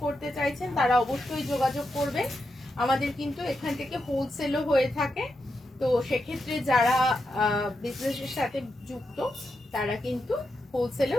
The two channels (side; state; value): both; normal; correlation 0.86